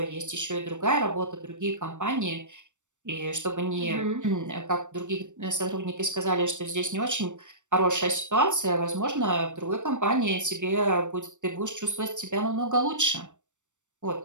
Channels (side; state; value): left; late; 0.85 ms